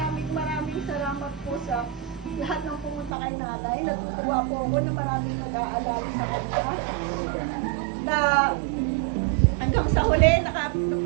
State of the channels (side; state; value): left; drops out; at 3.1 s